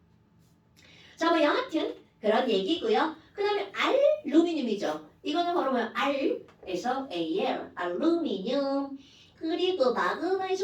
자, 뭐 여하튼 그런 얘기고요. 그 다음에 알루미늄이죠. 이거는 바로 뭐야? R에서 AL, 알루미늄. 그리고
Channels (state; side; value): identical; both; correlation 1.00